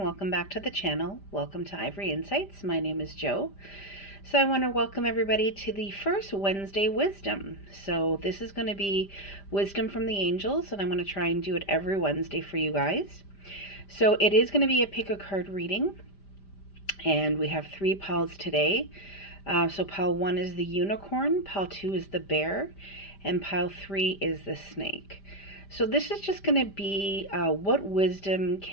welcome back to the channel. Welcome to Ivory Insights. My name is Jo. So I want to welcome everybody to the first Wednesday Wisdom. So this is going to be Wisdom from the Angels, and I'm going to try and do it every Wednesday for you guys. So it is going to be a pick a card reading, and we have 3 piles today. So pile 1 is the unicorn, pile 2 is the bear, and pile 3 is the snake. So this is just going to be what wisdom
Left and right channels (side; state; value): right; late; 5.0 ms